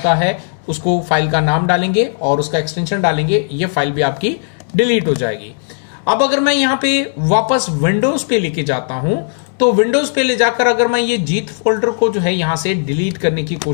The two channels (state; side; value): silent; right; digital silence